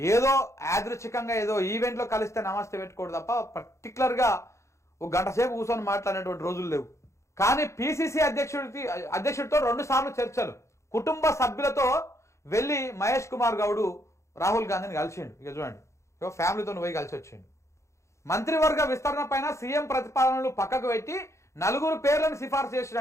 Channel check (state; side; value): late; right; 0.14 ms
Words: యాదృచ్ఛికంగా ఏదో ఈవెంట్లో కలిస్తే నమస్తే పెట్టుకోడు తప్ప పర్టికులర్గా ఒక గంట సేపు కూర్చొని మాట్లాడినటువంటి రోజులు లేవు. కానీ పిసిసి అధ్యక్షుడితో 2 సార్లు చర్చలు, కుటుంబ సభ్యులతో వెళ్ళి మహేష్ కుమార్ గౌడ్ రాహుల్ గాంధీని కలిసిండు. ఇక చూడండి, ఇక ఫ్యామిలీతో పోయి కలిసి వచ్చిండు. మంత్రివర్గ విస్తరణ పైన సీఎం ప్రతిపాదనలు పక్కకు పెట్టి 4 పేర్లను సిఫార్సు